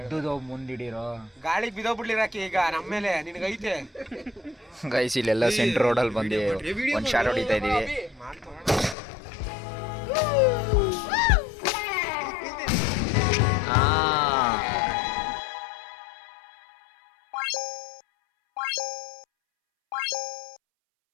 ಮುಂದಿಡಿರೋ ಗಾಳಿಗೆ ಬಿದ್ದೋಗ್ಬಿಡ್ಲಿರಾಕಿ ಈಗ ನಮ್ಮ ಮೇಲೆ ನಿನಗೈತೆ. ಗೈಸ್ ಇಲ್ಲೆಲ್ಲ ಸೆಂಟ್ರ್ ರೋಡಲ್ಲಿ ಬಂದು ಒಂದು ಶಾಟ್ ಹೊಡಿತಾ ಇದ್ದೀವಿ.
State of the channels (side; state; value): right; drops out; at 9.0 s